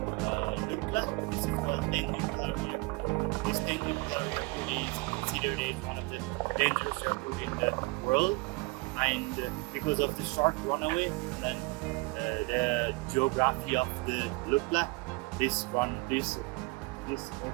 Lukla. This is called Tengboche Airport. This Tengboche Airport is considered as one of the dangerous airports in the world, and because of the short runway and the geography of the Lukla, this airport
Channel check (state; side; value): quieter; left; 26.4 dB